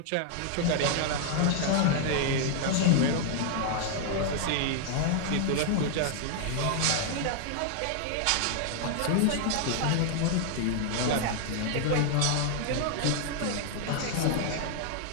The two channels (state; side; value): different; both; correlation 0.00